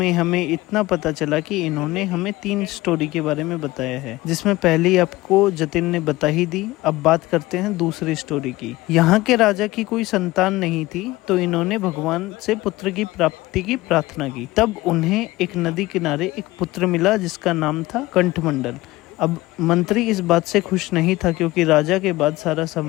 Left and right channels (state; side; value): quieter; right; 19.0 dB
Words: हमें इतना पता चला कि इन्होंने हमें 3 स्टोरी के बारे में बताया है, जिसमें पहली आपको जतिन ने बता ही दी। अब बात करते हैं दूसरी स्टोरी की। यहाँ के राजा की कोई संतान नहीं थी, तो इन्होंने भगवान से पुत्र की प्राप्ति की प्रार्थना की। तब उन्हें एक नदी किनारे एक पुत्र मिला जिसका नाम था कंठमंडल। अब मंत्री इस बात से खुश नहीं था क्योंकि राजा के बाद सारा